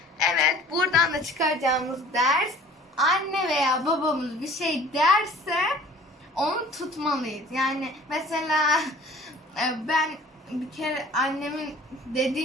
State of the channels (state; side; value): normal; both; correlation 0.48